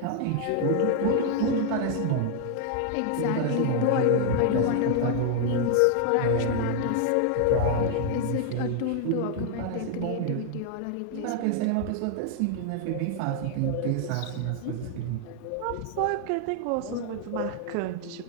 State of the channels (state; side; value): different; both; correlation 0.00